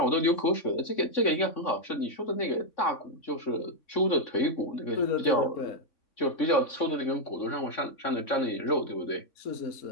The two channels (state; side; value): late; right; 3.6 ms